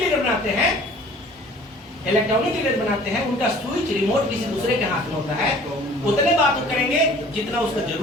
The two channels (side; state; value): both; normal; correlation 0.49